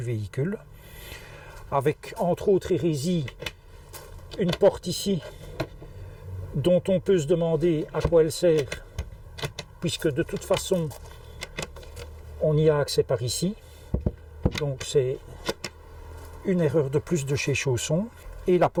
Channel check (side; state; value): both; identical; correlation 1.00